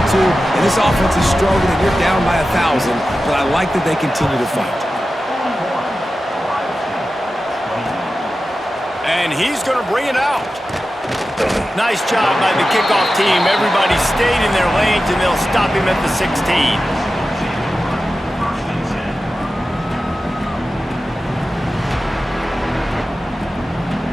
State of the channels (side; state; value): both; normal; correlation 0.93